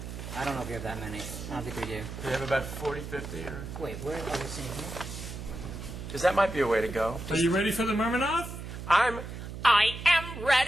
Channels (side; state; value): right; noise; hum, 9 dB below the sound